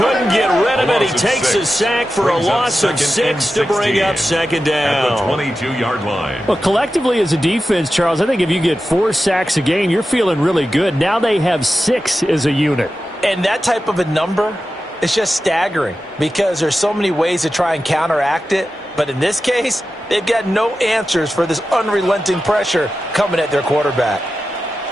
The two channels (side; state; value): both; normal; correlation 0.92